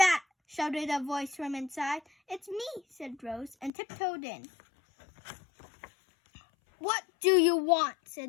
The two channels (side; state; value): right; drops out; at 3.7 s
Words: shouted a voice from inside. "It's me," said Rose, and tiptoed in. "What do you want?" said